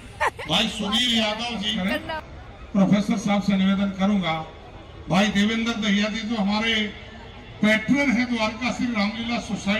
भाई सुनील यादव जी। प्रोफेसर साहब से निवेदन करूंगा, भाई देवेंद्र दहिया जी जो हमारे पैट्रन हैं द्वारका श्री रामलीला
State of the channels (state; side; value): identical; both; correlation 1.00